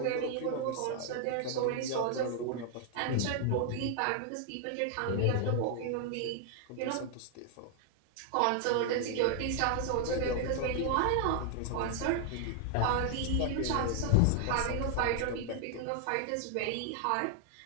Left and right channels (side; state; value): both; different; correlation 0.00